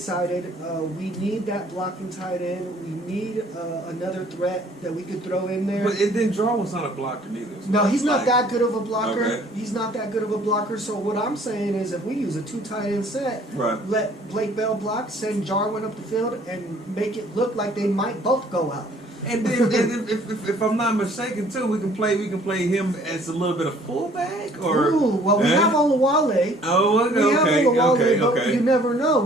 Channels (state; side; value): normal; both; correlation 0.57